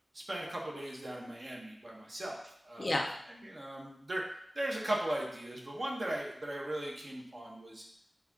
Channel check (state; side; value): normal; both; correlation 0.96